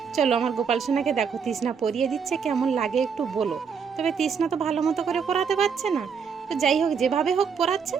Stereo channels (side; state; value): left; quieter; 6.3 dB